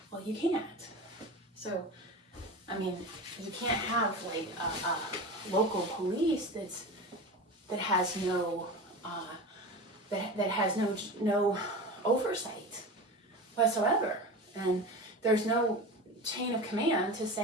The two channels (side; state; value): both; normal; correlation 0.29